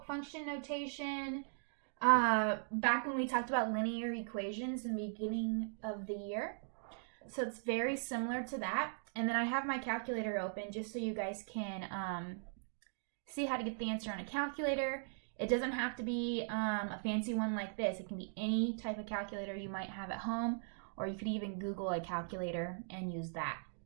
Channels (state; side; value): silent; left; digital silence